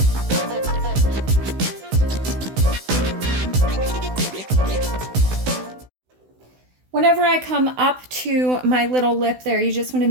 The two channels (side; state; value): left; late; 16 ms